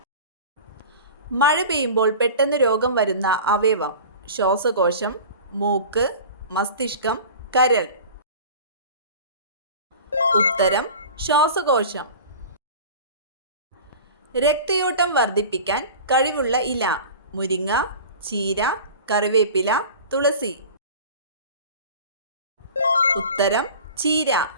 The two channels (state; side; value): inverted; both; correlation -0.38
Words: മഴ പെയ്യുമ്പോൾ പെട്ടെന്ന് രോഗം വരുന്ന അവയവം: ശ്വാസകോശം, മൂക്ക്, മസ്തിഷ്കം, കരൾ. ഉത്തരം ശ്വാസകോശം. രക്തയോട്ടം വർദ്ധിപ്പിക്കാൻ കഴിവുള്ള ഇല: മുരിങ്ങ, ചീര, കറിവേപ്പില, തുളസി. ഉത്തരം ചീര.